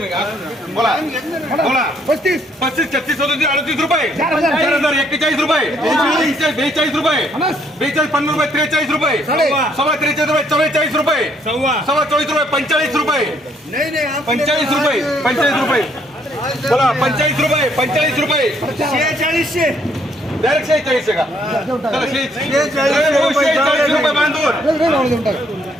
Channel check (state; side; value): normal; both; correlation 0.67